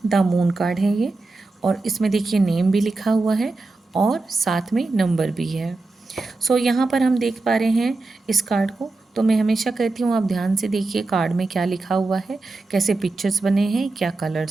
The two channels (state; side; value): quieter; left; 3.4 dB